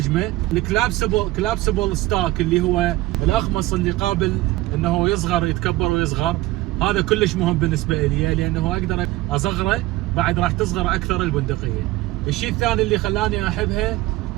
الكلابسبل ستاك اللي هو الاخمص اللي قابل انه يصغر يتكبر ويصغر، هذا كلش مهم بالنسبه لي لانه اقدر اصغره بعد راح تصغر اكثر البندقيه. الشيء الثاني اللي خلاني احبها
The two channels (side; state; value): left; quieter; 18.1 dB